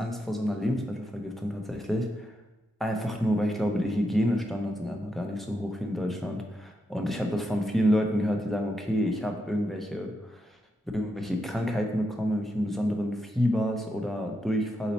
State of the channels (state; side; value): normal; both; correlation 0.83